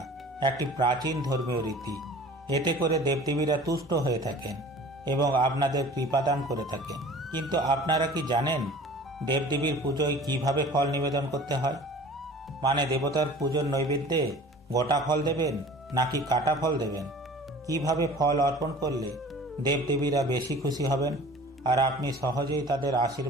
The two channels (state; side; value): normal; both; correlation 0.44